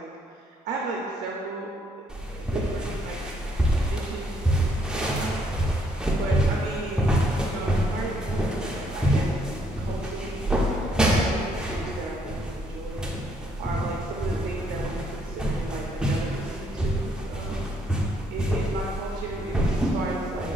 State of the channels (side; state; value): both; normal; correlation 0.70